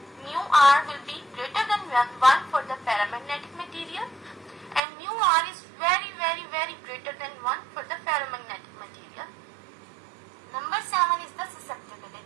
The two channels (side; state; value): left; drops out; at 4.8 s